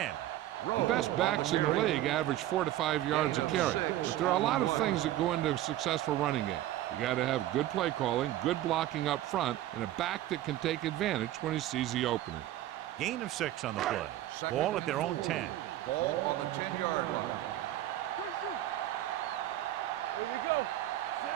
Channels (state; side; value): quieter; left; 14.0 dB